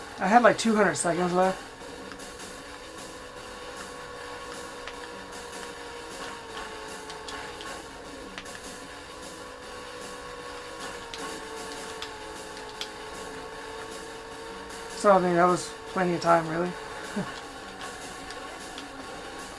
had like 200 seconds left. So I mean, that was plenty of time, really.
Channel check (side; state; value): both; identical; correlation 1.00